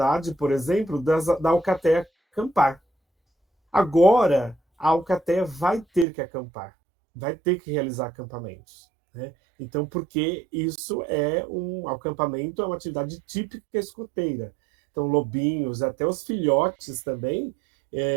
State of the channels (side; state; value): left; drops out; at 6.1 s